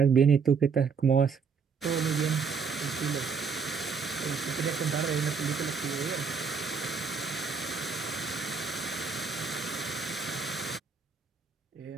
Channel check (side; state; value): left; quieter; 5.6 dB